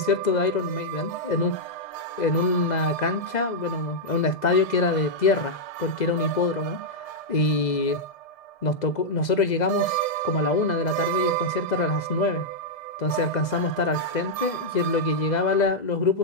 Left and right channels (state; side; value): late; right; 2.0 ms